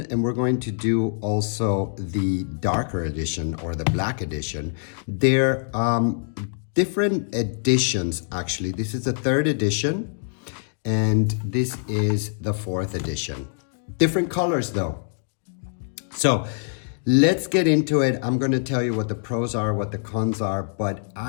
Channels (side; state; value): right; silent; digital silence